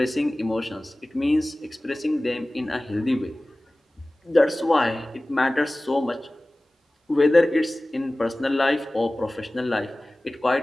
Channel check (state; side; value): normal; both; correlation 0.98